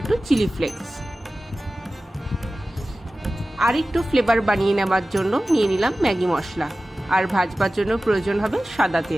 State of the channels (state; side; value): normal; both; correlation 0.96